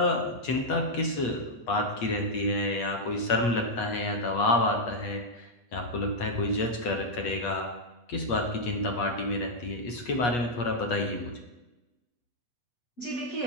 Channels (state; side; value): late; right; 8.3 ms